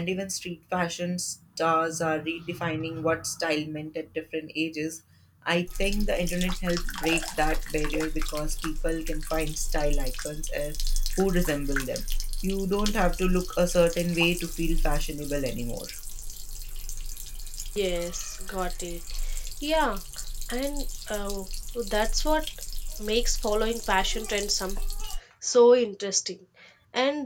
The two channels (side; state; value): both; identical; correlation 1.00